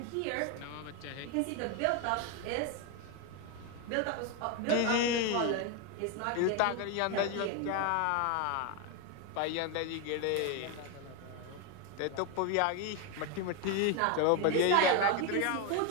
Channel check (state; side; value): different; both; correlation 0.02